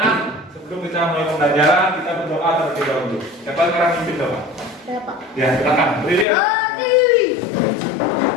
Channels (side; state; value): right; drops out; at 6.2 s